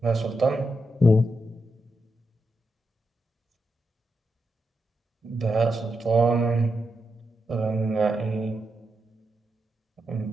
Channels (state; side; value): normal; both; correlation 0.86